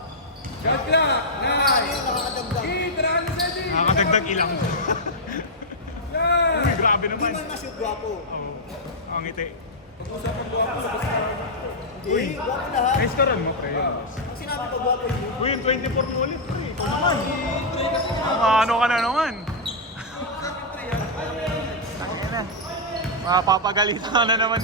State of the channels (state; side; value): normal; both; correlation -0.06